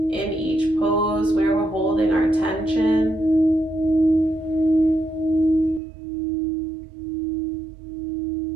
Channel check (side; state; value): left; drops out; at 5.8 s